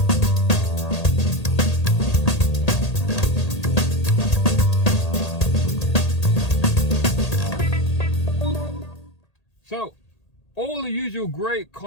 So, all the usual great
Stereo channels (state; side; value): late; right; 1.8 ms